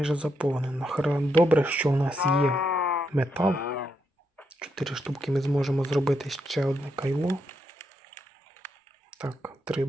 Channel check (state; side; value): normal; both; correlation 0.80